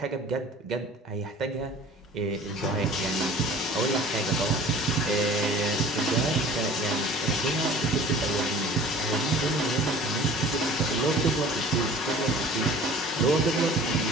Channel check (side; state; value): both; normal; correlation 0.45